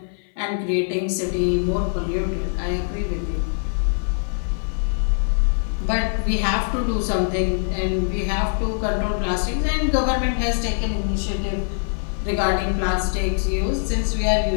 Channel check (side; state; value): right; silent; 55 dB below the other